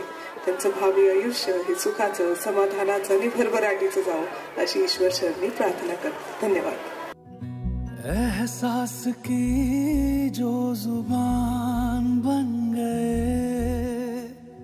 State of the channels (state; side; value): identical; both; correlation 1.00